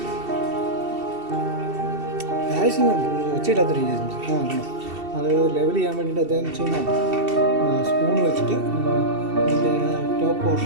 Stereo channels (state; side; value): late; left; 2.7 ms